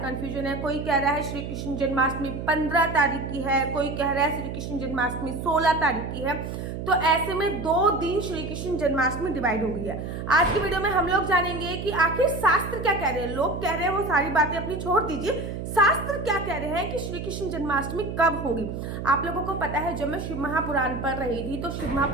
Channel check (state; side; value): noise; right; hum, 6 dB below the sound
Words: है। कोई कह रहा है श्री कृष्ण जन्माष्टमी 15 तारीख की है, कोई कह रहा है श्री कृष्ण जन्माष्टमी 16 तारीख की है। तो ऐसे में 2 दिन श्री कृष्ण जन्माष्टमी डिवाइड हो गई है। आज की वीडियो में हम लोग जानेंगे कि आखिर शास्त्र क्या कह रहे हैं। लोग कह रहे हैं वो सारी बातें अपनी छोड़ दीजिए, शास्त्र क्या कह रहे हैं कि श्री कृष्ण जन्माष्टमी कब होगी। आप लोगों को पता है, जब मैं शिव महापुराण पढ़ रही थी तो शिव